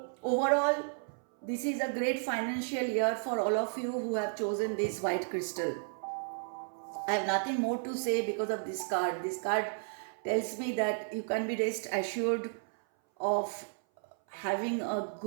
overall, this is a great financial year for all of you who have chosen this white crystal. I have nothing more to say because of this card. This card tells me that you can be rest assured of having a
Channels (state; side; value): silent; left; 56 dB below the other